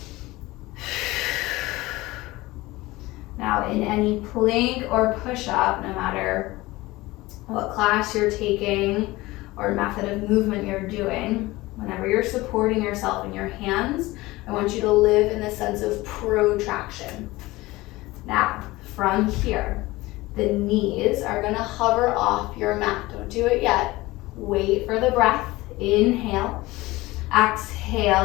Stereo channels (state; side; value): quieter; right; 19.8 dB